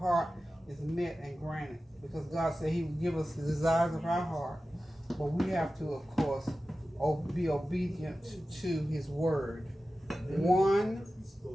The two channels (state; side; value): normal; both; correlation 0.94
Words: is met and granted, because God said He would give us the desires of our heart. But we have to, of course, be obedient to His word.